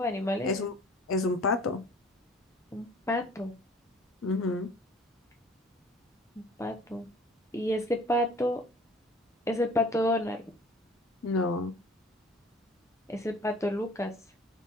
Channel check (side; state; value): both; normal; correlation 0.50